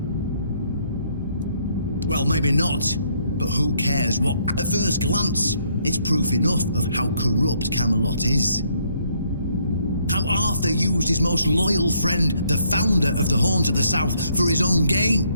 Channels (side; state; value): both; inverted; correlation -0.69